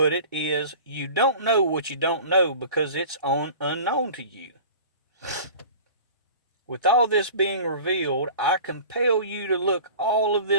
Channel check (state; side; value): inverted; both; correlation -0.41